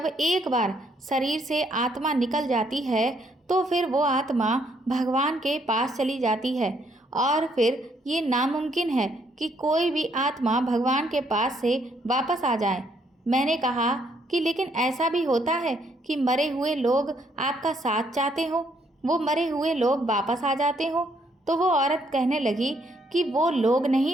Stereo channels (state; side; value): normal; both; correlation 0.70